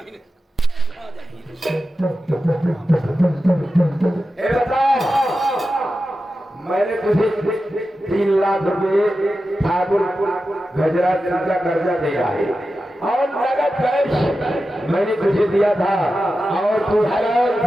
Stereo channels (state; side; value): normal; both; correlation 0.92